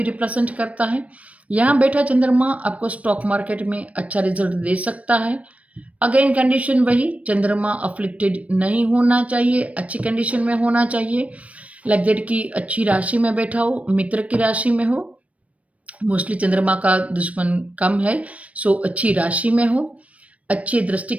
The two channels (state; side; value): late; left; 0.066 ms